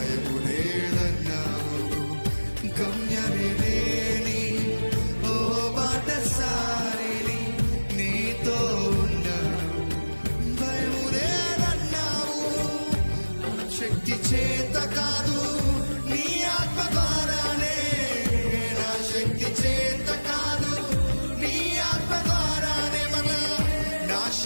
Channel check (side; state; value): both; inverted; correlation -1.00